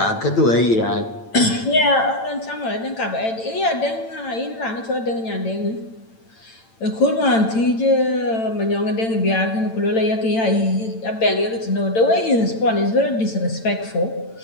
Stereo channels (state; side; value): late; right; 8.9 ms